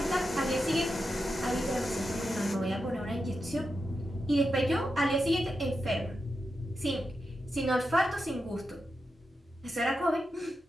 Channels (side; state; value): both; normal; correlation 0.88